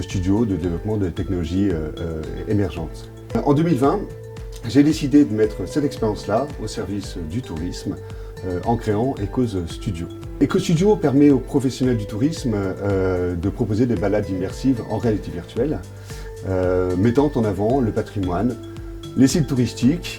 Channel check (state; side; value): identical; both; correlation 1.00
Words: studios de développement de technologies émergentes. En 2020, j'ai décidé de mettre cette expérience-là au service du tourisme en créant Ecose Studio. Ecose Studio permet aux professionnels du tourisme de proposer des balades immersives en réalité virtuelle, mettant en avant le patrimoine, les sites